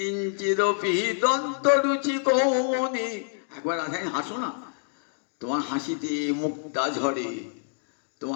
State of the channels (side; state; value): right; silent; digital silence